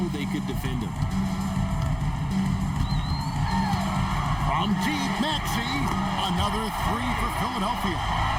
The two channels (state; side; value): identical; both; correlation 1.00